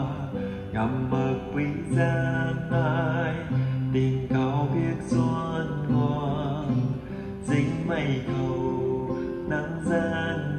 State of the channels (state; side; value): identical; both; correlation 1.00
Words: ngầm mơ quý giang ai tình cao biết xuân ngoan dính mây cầu nắng gian